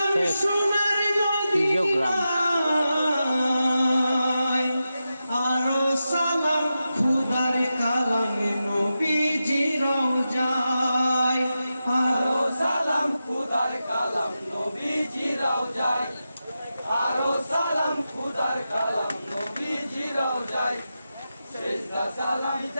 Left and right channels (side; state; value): both; inverted; correlation -0.91